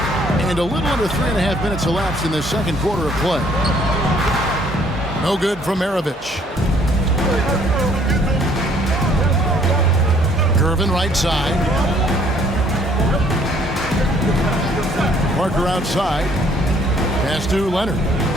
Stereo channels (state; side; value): normal; both; correlation 0.62